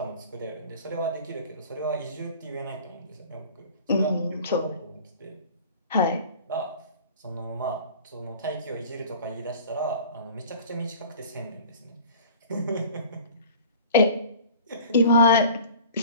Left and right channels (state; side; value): inverted; both; correlation -0.43